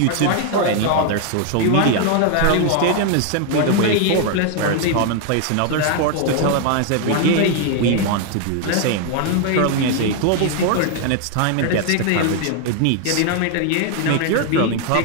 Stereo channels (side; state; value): both; different; correlation 0.00